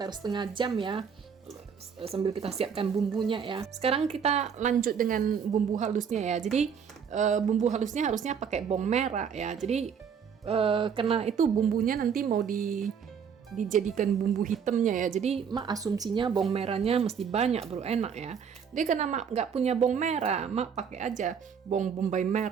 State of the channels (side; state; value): left; quieter; 7.0 dB